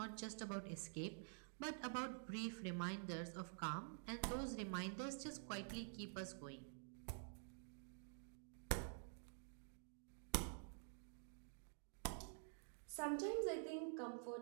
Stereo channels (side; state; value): left; silent; digital silence